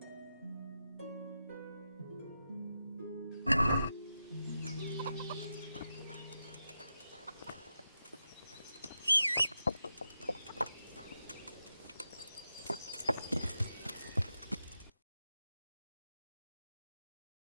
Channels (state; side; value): inverted; both; correlation -0.88